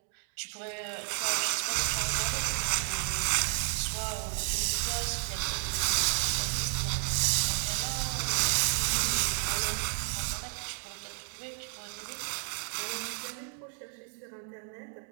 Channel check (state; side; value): silent; left; 57 dB below the other